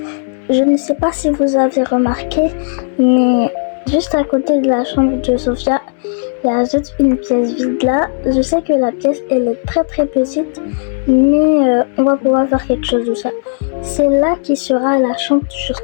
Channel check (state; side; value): silent; right; digital silence